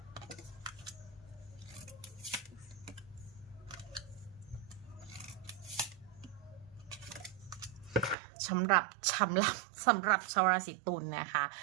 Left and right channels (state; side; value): drops out; left; at 8.2 s